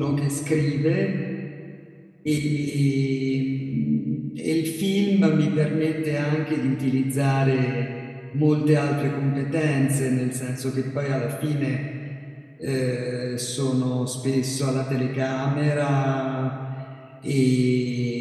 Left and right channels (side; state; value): both; identical; correlation 1.00